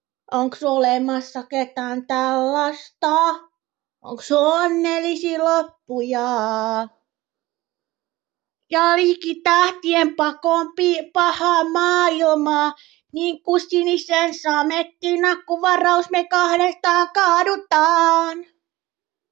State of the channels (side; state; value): left; quieter; 18.6 dB